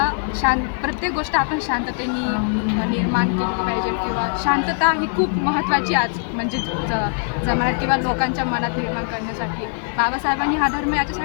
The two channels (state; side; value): silent; right; 65 dB below the other